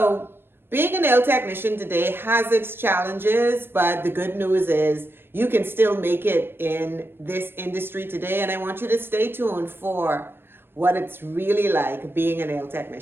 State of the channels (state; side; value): late; left; 0.11 ms